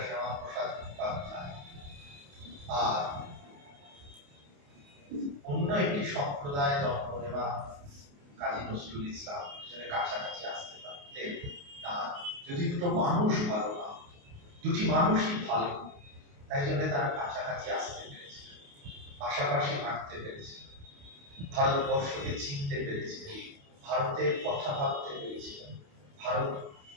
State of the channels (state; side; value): late; left; 28 ms